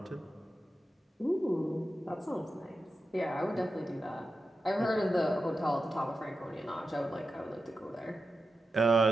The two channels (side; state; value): both; normal; correlation 0.91